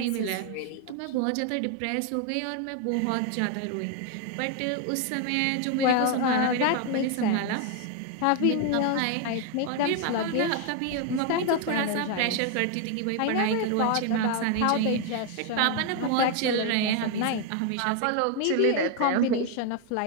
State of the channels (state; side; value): different; both; correlation 0.01